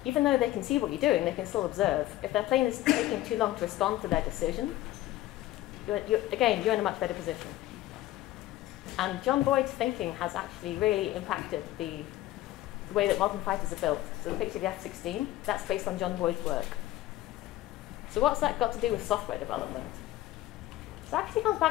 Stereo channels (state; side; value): quieter; right; 15.6 dB